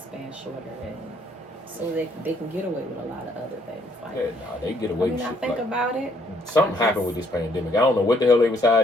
shorter. And so they can get away with a lot of other things. Like, they get away with shit. I think about it. Something happened with this pandemic. I don't know what the hell they was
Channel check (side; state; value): both; normal; correlation 0.68